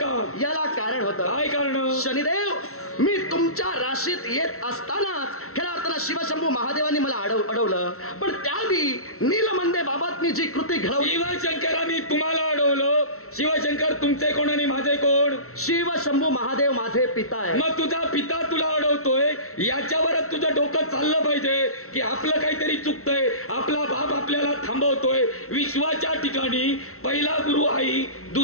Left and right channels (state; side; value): late; right; 0.63 ms